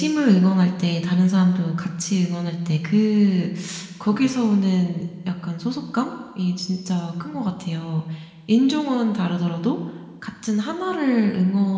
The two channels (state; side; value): identical; both; correlation 1.00